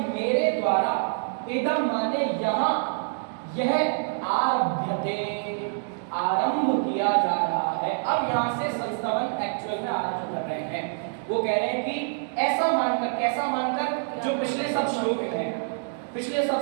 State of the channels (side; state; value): left; silent; digital silence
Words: मेरे द्वारा, इदम माने यहाँ, यह आरभ्यते आरंभ किया जा रहा है। अब यहाँ से संस्तवन एक्चुअल में आरंभ कर रहे हैं। वो कह रहे हैं कि ऐसा मानकर, कैसा मानकर, जो पिछले सब श्लोक हैं, पिछले सब